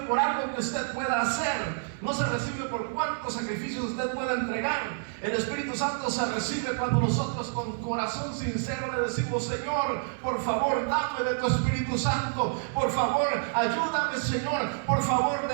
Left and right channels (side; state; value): left; silent; digital silence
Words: algo que usted pueda hacer, no se recibe por cuántos sacrificios usted pueda entregar. El Espíritu Santo se recibe cuando nosotros con corazón sincero le decimos: Señor, por favor, dame de tu Espíritu Santo, por favor, ayúdame, Señor, por favor,